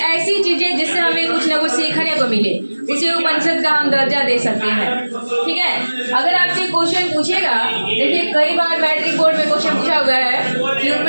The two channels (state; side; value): inverted; both; correlation -1.00